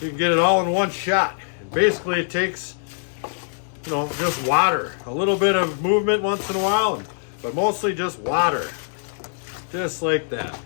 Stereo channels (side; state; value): right; silent; digital silence